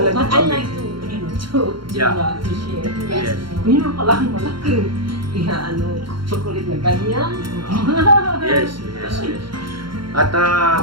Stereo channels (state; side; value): late; left; 0.73 ms